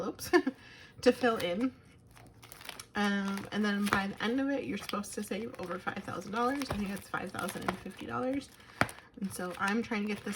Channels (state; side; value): identical; both; correlation 1.00